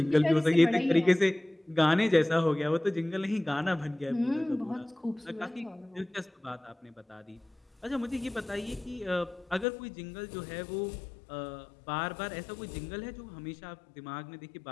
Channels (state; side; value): drops out; right; at 9.7 s